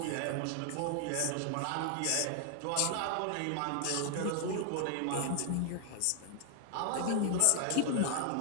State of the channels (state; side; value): different; both; correlation 0.00